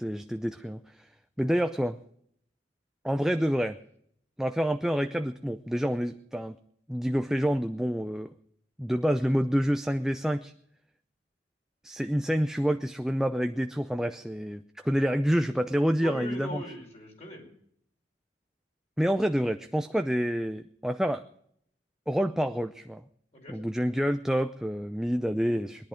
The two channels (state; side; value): normal; both; correlation 0.96